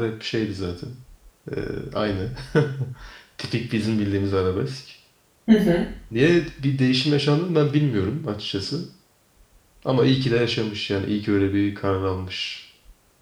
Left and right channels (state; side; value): identical; both; correlation 1.00